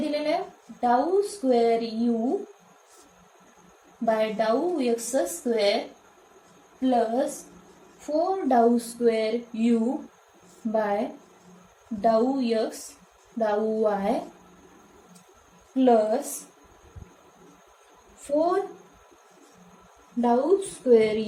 आहे, डाऊ स्क्वेअर यू बाय डाऊ एक्स स्क्वेअर प्लस 4 डाऊ स्क्वेअर यू बाय डाऊ एक्स डाऊ वाय प्लस 4 डाऊ स्क्वेअर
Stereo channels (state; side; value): identical; both; correlation 1.00